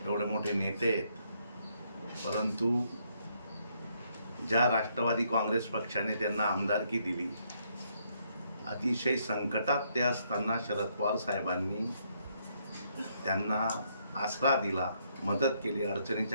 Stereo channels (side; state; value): both; inverted; correlation -0.73